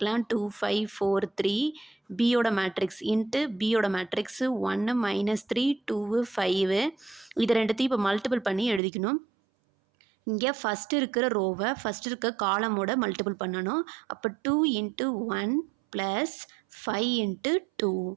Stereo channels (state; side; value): drops out; left; at 8.8 s